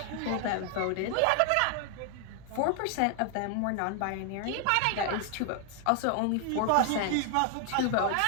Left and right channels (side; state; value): both; different; correlation 0.00